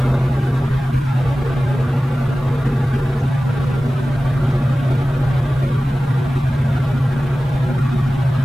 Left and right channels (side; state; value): both; normal; correlation 0.96